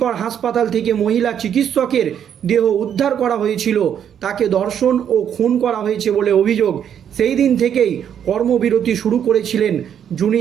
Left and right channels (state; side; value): quieter; left; 8.9 dB